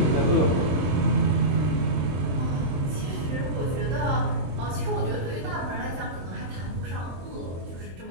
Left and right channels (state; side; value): late; left; 22 ms